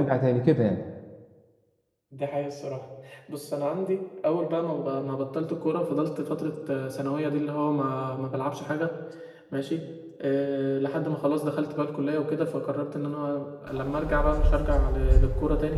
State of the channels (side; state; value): both; identical; correlation 1.00